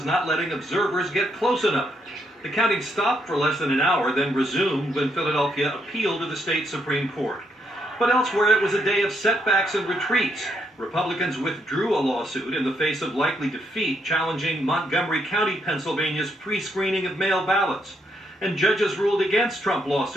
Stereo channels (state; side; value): normal; both; correlation 0.75